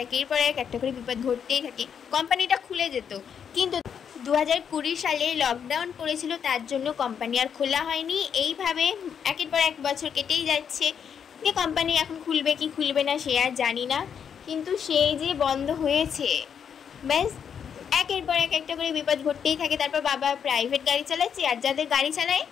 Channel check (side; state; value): right; quieter; 7.6 dB